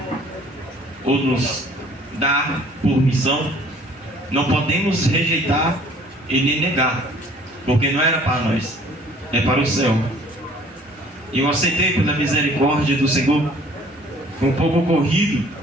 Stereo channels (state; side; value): normal; both; correlation 0.54